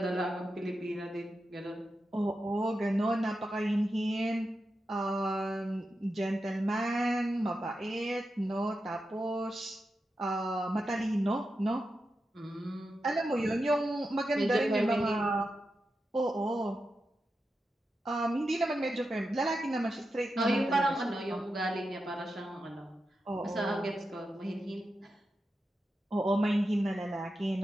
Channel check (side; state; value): both; normal; correlation 0.89